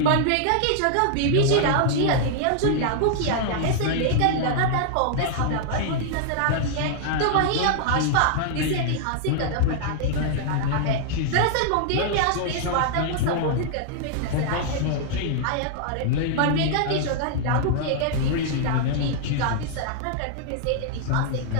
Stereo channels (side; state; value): both; different; correlation -0.01